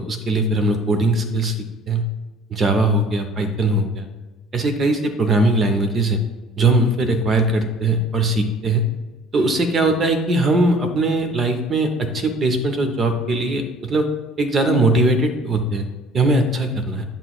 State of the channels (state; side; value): normal; both; correlation 0.51